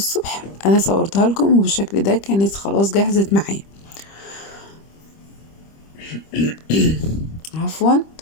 انا صورتها لكم وبالشكل ده كانت خلاص جهزت معايا. عفوا.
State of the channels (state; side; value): late; right; 25 ms